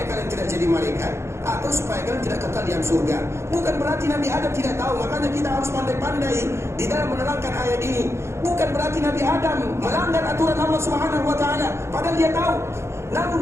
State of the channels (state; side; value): late; left; 0.13 ms